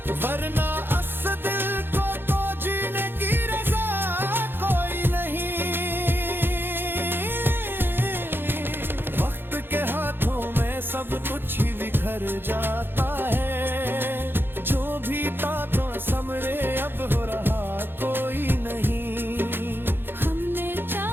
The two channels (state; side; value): late; left; 0.10 ms